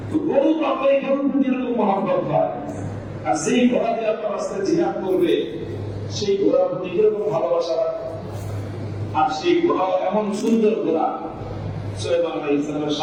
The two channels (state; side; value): identical; both; correlation 1.00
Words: তো গরু তো আপনার এই গরুর প্রতি এরকম মহব্বত হয়, আর যেই ঘোড়া দিয়ে আপনার রাস্তায় জিহাদ করবে সেই ঘোড়ার প্রতি কিরকম ভালোবাসা রাখবে। আর সেই ঘোড়া এমন সুন্দর ঘোড়া, সুলাইমান আলাইহিস সালামের